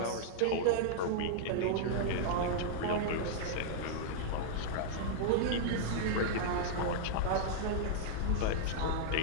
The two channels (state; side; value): different; both; correlation -0.01